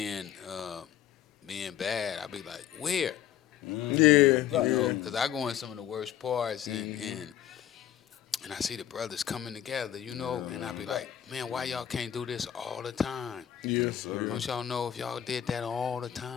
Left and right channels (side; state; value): right; quieter; 10.7 dB